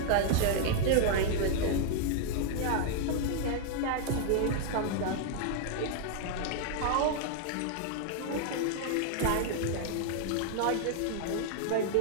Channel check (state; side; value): different; both; correlation 0.00